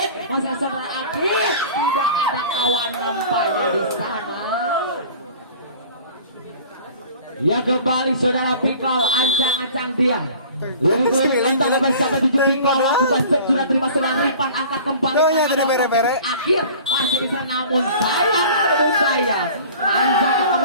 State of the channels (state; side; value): inverted; both; correlation -0.44